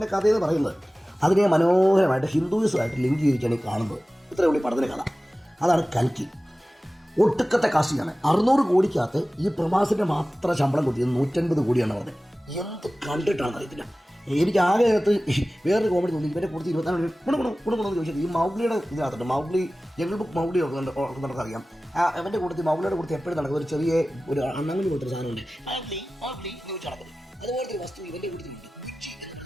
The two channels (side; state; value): both; normal; correlation 0.96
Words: കഥയെന്ന് പറയുന്നത്. അതിനെ മനോഹരമായിട്ട് ഹിന്ദുയിസമായിട്ട് ലിങ്ക് ചെയ്തിട്ടാണ് ഈ കാണുന്നത്. ഇത്രയേ ഉള്ളൂ ഈ പടത്തിൻ്റെ കഥ. അതാണ് കൽക്കി. ഒട്ടുക്കത്തെ കാസ്റ്റിംഗാണ്. 600 കോടിക്കകത്ത് ഈ പ്രഭാസിൻ്റെ മാത്രം ശമ്പളം കൊടുത്തത് 150 കോടിയാണ് പറഞ്ഞത്. എന്ത് കണ്ടിട്ടാണെന്ന് അറിയത്തില്ല. എനിക്ക് ആകെ അകത്ത് വേറൊരു കോമഡി തോന്നി. ഇവരെ കൊടുത്ത് 24 ഗുണമെന്ന് ചോദിച്ചത് ഈ മൗഗ്ലിയുടെ ഇതിനകത്തുണ്ട്. മൗഗ്ലി, ജംഗിൾ ബുക്ക് മൗഗ്ലി നമുക്കറിയാം. അവൻ്റെ കൂട്ടത്തിൽ മൗഗ്ലിയുടെ കൂട്ടത്തിൽ എപ്പോഴും നടക്കുന്നത് ഒരു ചെറിയ ഒരു അണ്ണാങ്ങി പോലത്തെ സാധനമുണ്ട്, മൗഗ്ലി എന്ന് ചോദിച്ച് നടക്കുന്നത്. അതുപോലത്തെ ഒരു വസ്തു ഇവൻ്റെ കൂട്ടത്തിലുണ്ട്.